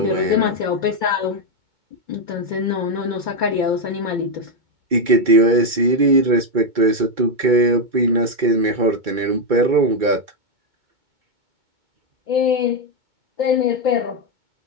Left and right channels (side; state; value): left; late; 2.3 ms